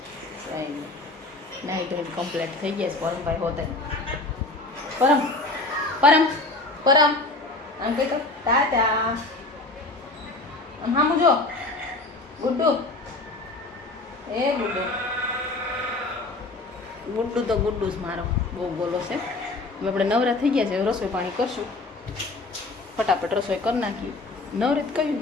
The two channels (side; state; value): right; quieter; 3.1 dB